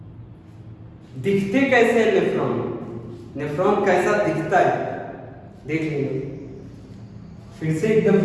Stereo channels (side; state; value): both; identical; correlation 1.00